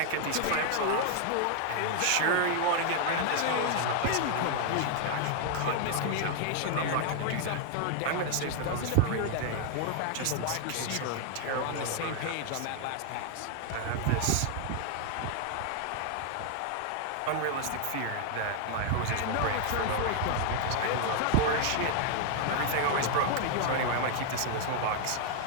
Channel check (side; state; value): both; different; correlation 0.00